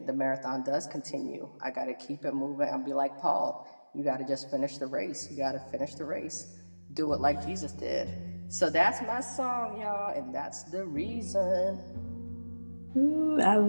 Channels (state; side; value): inverted; both; correlation -1.00